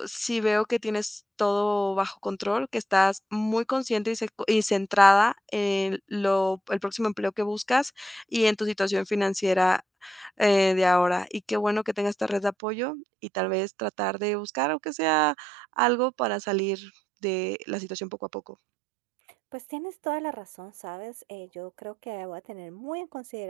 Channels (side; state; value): left; drops out; at 12.6 s